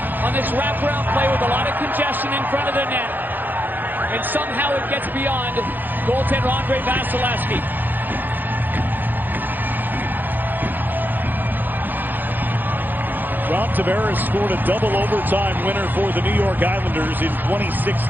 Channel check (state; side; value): late; left; 0.088 ms